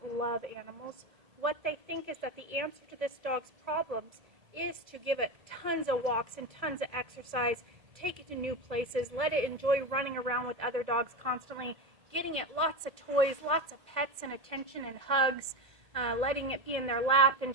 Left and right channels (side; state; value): left; late; 1.7 ms